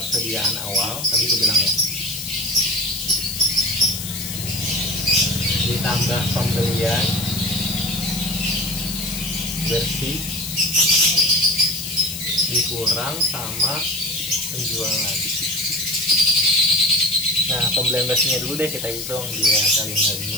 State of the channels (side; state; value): left; noise; hiss, 7 dB below the sound